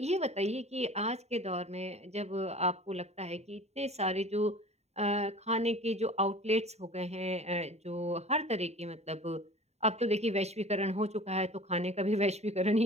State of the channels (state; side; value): late; left; 0.32 ms